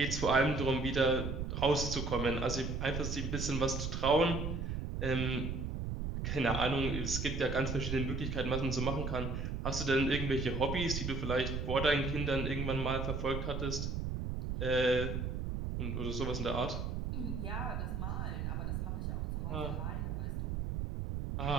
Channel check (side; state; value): right; noise; rumble, 2 dB below the sound